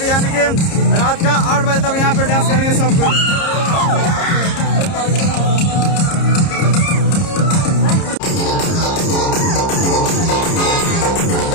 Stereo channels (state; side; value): late; right; 30 ms